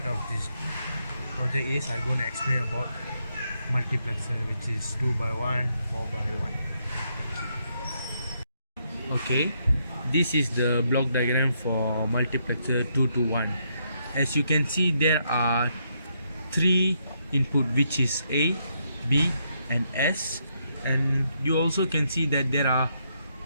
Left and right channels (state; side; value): inverted; both; correlation -0.77